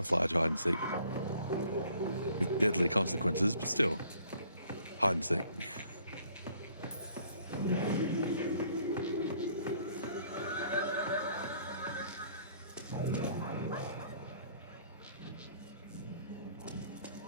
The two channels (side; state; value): both; inverted; correlation -0.60